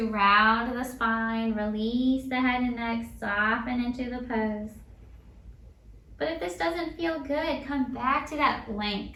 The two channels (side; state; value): both; identical; correlation 1.00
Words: round the spine, release the head and neck, soften into the pose. But if this doesn't feel good, come back to that